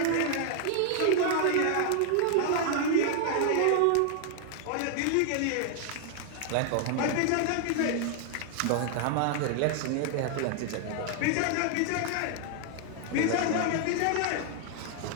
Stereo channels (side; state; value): both; different; correlation 0.00